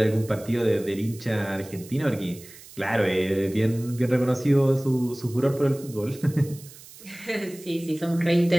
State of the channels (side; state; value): right; noise; hiss, 19 dB below the sound